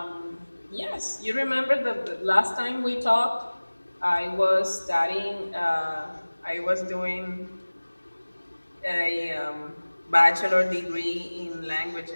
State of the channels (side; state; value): both; inverted; correlation -1.00